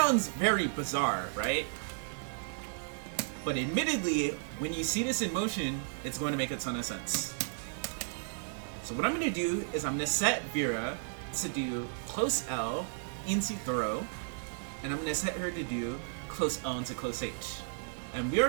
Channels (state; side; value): silent; left; 55 dB below the other